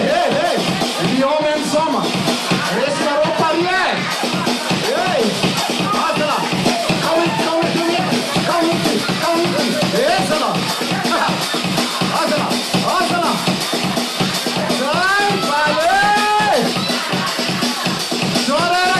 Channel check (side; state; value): both; identical; correlation 1.00